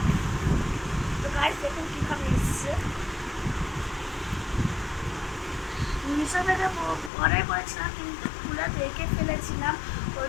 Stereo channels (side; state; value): right; drops out; at 7.1 s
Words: তো গাইস দেখুন কীভাবে এসছে। মিশো থেকে অর্ডার করেছিলাম কিন্তু খুলে দেখে ফেলেছিলাম, ওই